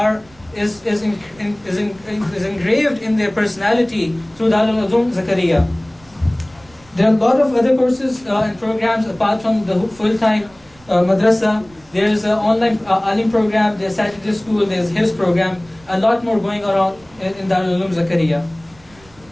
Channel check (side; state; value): right; noise; rumble, 28 dB below the sound